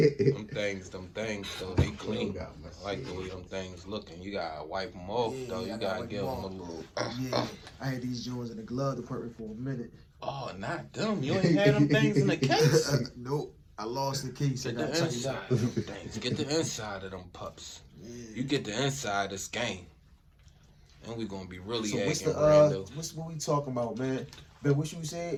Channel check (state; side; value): identical; both; correlation 1.00